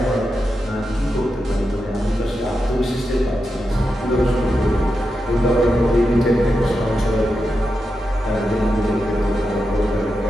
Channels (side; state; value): both; normal; correlation 0.88